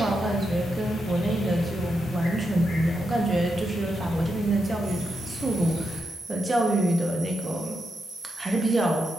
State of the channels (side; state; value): both; normal; correlation 0.85